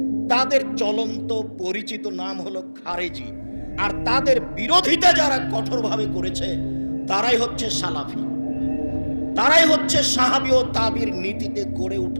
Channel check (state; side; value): inverted; both; correlation -1.00